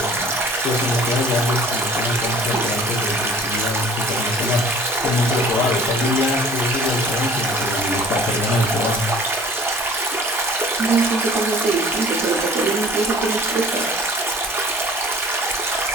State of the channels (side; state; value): both; normal; correlation 0.49